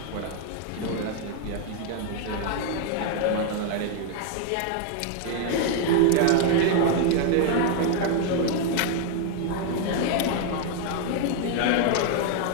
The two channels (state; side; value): different; both; correlation 0.00